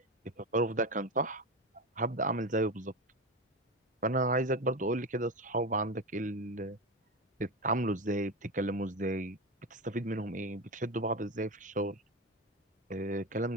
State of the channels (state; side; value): normal; both; correlation 0.19